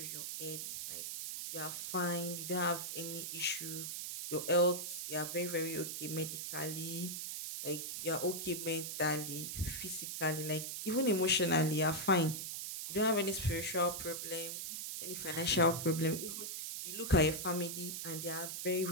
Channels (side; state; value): right; noise; hiss, 5 dB below the sound